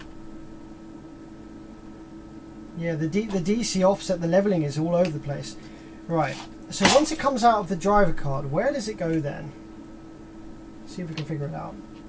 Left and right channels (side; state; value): both; identical; correlation 1.00